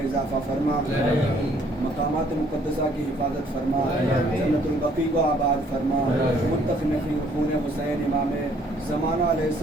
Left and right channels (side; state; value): both; normal; correlation 0.63